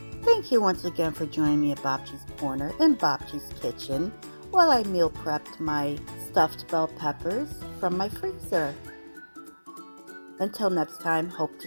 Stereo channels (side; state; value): both; inverted; correlation -1.00